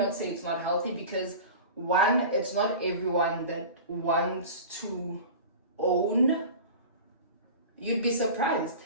say it's not healthy because one, it's not everyone that wants to own. You'd be surprised.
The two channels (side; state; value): both; inverted; correlation -0.35